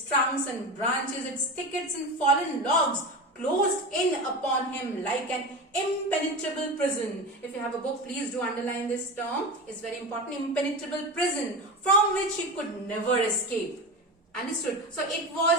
trunks and branches, its thickets and fallen logs closed in upon him like an impenetrable prison. If you have a book, please do underline this term. It's very important. Impenetrable prison from which he could never escape. Understood? So it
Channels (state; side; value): normal; both; correlation 0.25